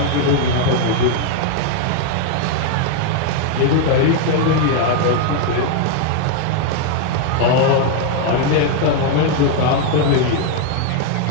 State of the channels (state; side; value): different; both; correlation 0.01